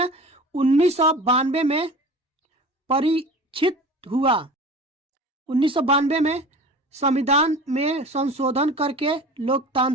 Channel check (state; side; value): normal; both; correlation 0.38